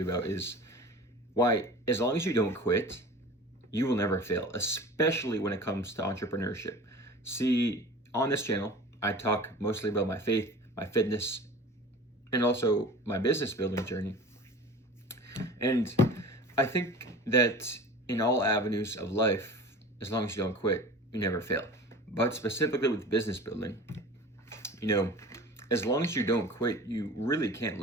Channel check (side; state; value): both; normal; correlation 0.39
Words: about is why, as long as you don't quit, you will never fail, especially when it comes to entrepreneurship. See, on this channel, I talk mostly about my faith, my fitness, and also my business building journey. And I think that in all avenues of life, as long as you don't quit, you never fail. But specifically with business building, as long as you don't quit, you really can't